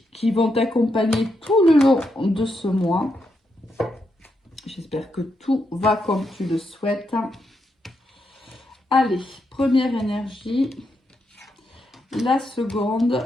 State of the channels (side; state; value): both; normal; correlation 0.82